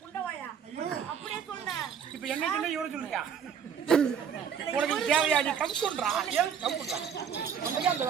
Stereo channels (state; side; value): quieter; left; 7.6 dB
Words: இப்ப என்ன சொன்ன இவரை சொல்றியா? உனக்கு தேவையா? நீ கம்குன்றா ஏன் கம்குன்றா? அந்த